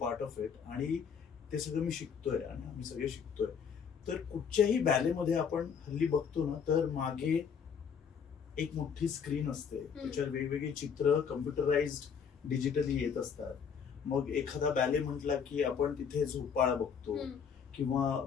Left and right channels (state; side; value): quieter; right; 6.8 dB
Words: of it आणि ते सगळं मी शिकतोय आणि आम्ही सगळे शिकतोय. तर कुठच्याही बॅलेमध्ये आपण हल्ली बघतो ना तर मागे एक मोठी स्क्रीन असते, त्याच्यावर वेगवेगळे चित्र कम्प्युटराइज्ड डिजिटली येत असतात. मग एखादा बॅले म्हटला की आपण तिथे झोपाळा बघतो किंवा